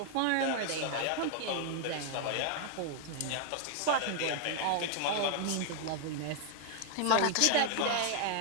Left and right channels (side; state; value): both; different; correlation 0.00